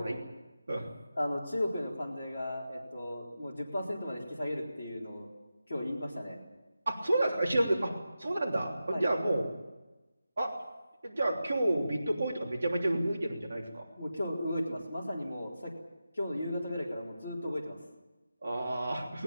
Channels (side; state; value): both; inverted; correlation -0.91